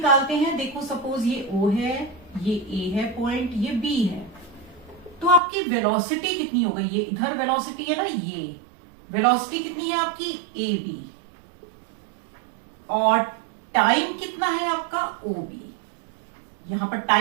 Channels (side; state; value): left; drops out; at 5.4 s